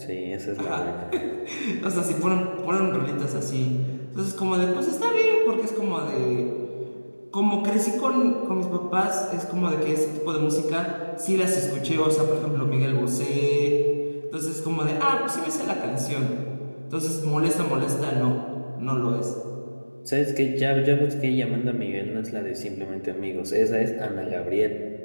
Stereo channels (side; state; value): both; inverted; correlation -1.00